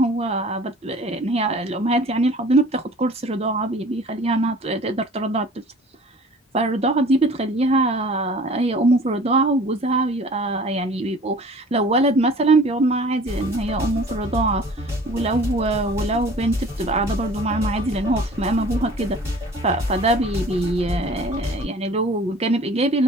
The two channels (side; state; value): both; normal; correlation 0.47